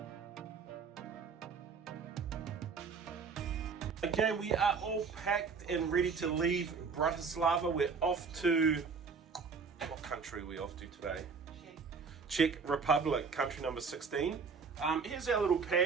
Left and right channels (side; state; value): left; quieter; 5.3 dB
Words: Okay, we are all packed and ready to leave Bratislava. We're off to, what country are we off to today? Czech Republic, country number 16. Here's our little